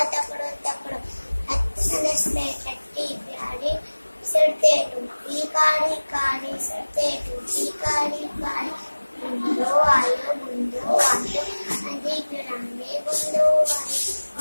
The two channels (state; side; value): inverted; both; correlation -1.00